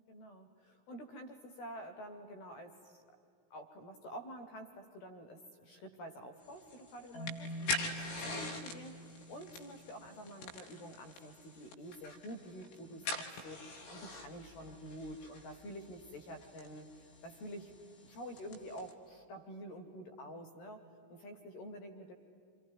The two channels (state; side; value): late; right; 17 ms